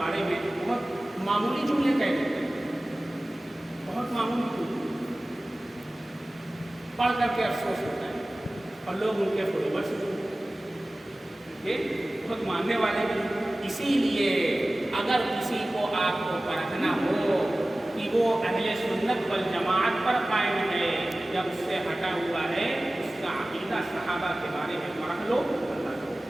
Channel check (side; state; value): both; normal; correlation 0.97